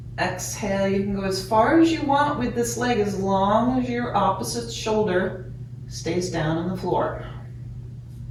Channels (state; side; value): identical; both; correlation 1.00